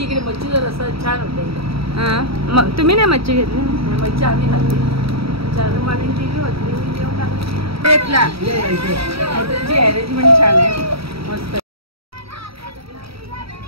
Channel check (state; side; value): late; left; 0.76 ms